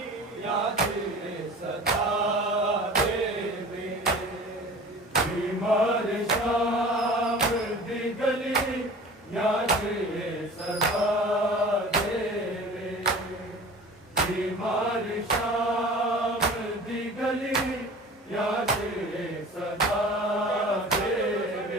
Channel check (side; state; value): both; normal; correlation 0.41